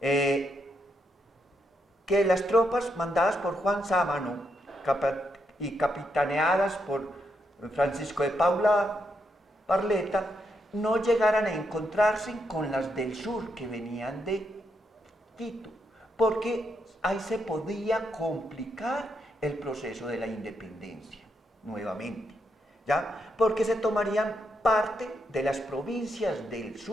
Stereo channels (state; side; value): normal; both; correlation 0.80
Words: las tropas mandadas por Juan Sámano y capitaneadas por Francisco de Paula Barleta no llegaran a encontrarse con las del sur que venían de Quito, porque ahí se podía complicar el proceso de la independencia nuevamente, ¿ya? Porque se tomarían parte de las provincias del